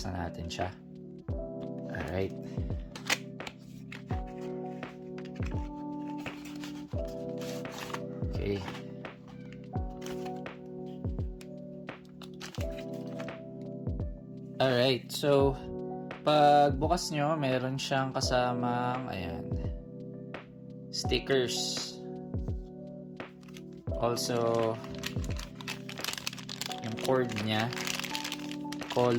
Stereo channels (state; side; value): identical; both; correlation 1.00